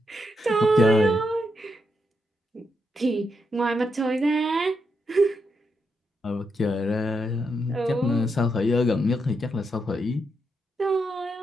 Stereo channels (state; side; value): normal; both; correlation 0.82